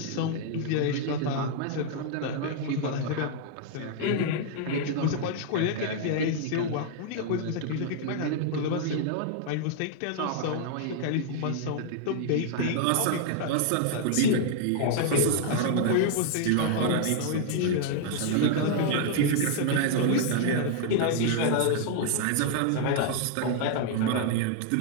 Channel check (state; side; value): different; both; correlation -0.01